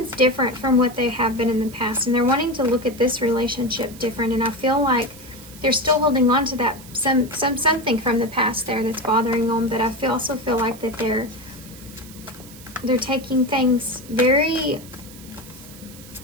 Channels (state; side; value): noise; right; hiss, 19 dB below the sound